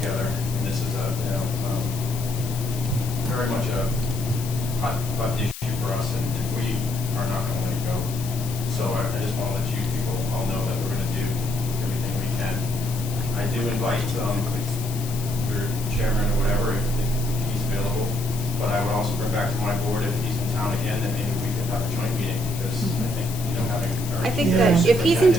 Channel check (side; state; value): left; noise; hiss, 11 dB below the sound